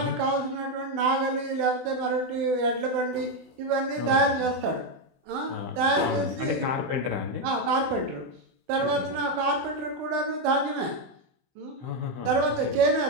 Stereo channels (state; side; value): late; left; 16 ms